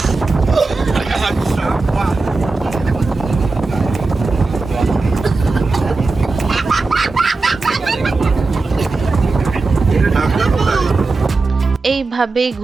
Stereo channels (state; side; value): quieter; left; 3.7 dB